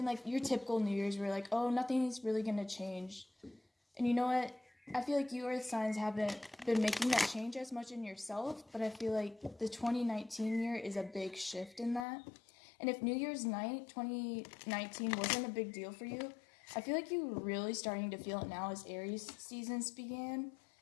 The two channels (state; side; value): drops out; right; at 12.1 s